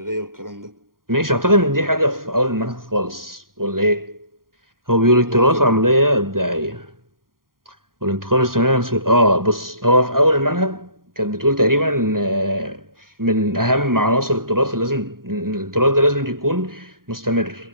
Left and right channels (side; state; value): left; late; 0.91 ms